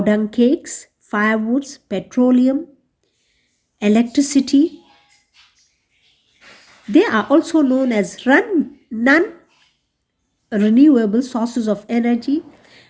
dung cakes, firewoods, petroleum, electricity. They are also known as non-renewable sources of energy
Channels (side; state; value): both; identical; correlation 1.00